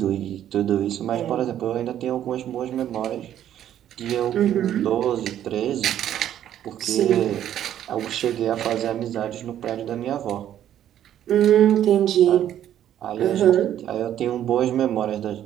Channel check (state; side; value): quieter; left; 11.0 dB